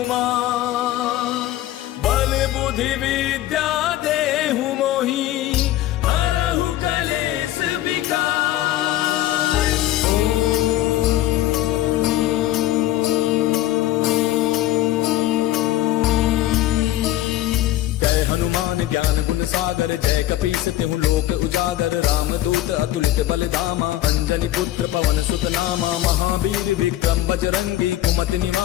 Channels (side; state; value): right; quieter; 14.4 dB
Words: बल बुद्धि विद्या देहु मोहि हरहु कलेश विकार। जय हनुमान ज्ञान गुण सागर जय कपीस तिहु लोक उजागर। राम दूत अतुलित बल धामा अंजनी पुत्र पवन सुत नामा। महावीर विक्रम बजरंगी कुमति